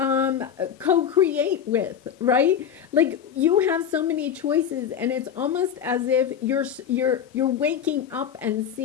co-create with, right? Like, you have so many choices, and it's almost as if you're waking up and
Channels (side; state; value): right; quieter; 8.5 dB